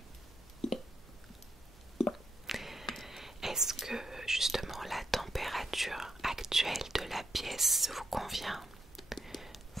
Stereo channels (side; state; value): both; normal; correlation 0.81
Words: Est-ce que justement la température actuelle de la pièce vous convient?